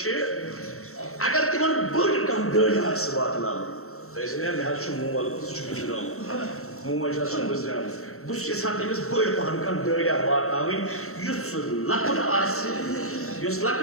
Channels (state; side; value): late; right; 0.63 ms